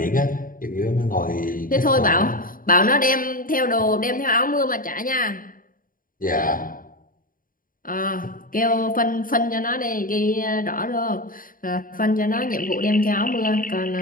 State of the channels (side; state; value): right; late; 0.40 ms